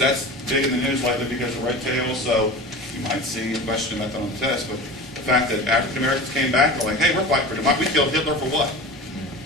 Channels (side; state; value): both; normal; correlation 0.34